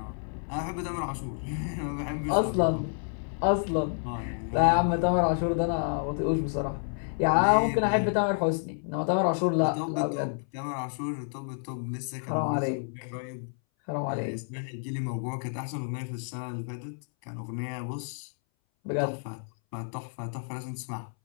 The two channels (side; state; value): right; silent; 58 dB below the other